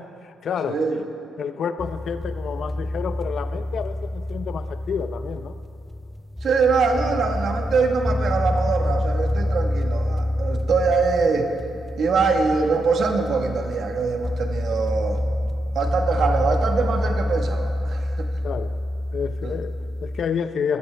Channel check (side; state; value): both; normal; correlation 0.83